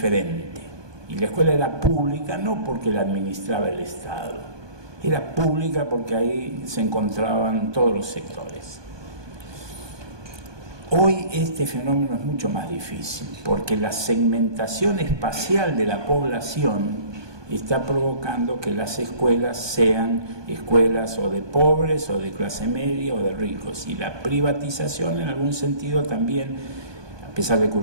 Y la escuela era pública no porque la administraba el Estado, era pública porque ahí se encontraban todos los sectores. Hoy este fenómeno es mucho más difícil, porque la segmentación espacial de la población está provocando que las escuelas sean escuelas o de pobres, o de clase media, o de ricos. Y la privatización, en algún sentido, también, a pesar de que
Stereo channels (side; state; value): left; late; 1.2 ms